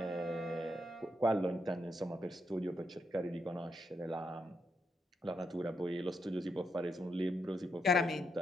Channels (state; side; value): normal; both; correlation 0.81